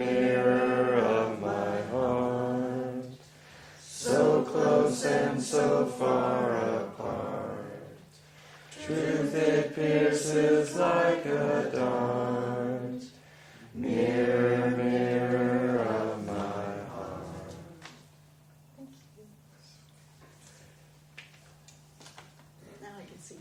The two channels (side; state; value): both; identical; correlation 1.00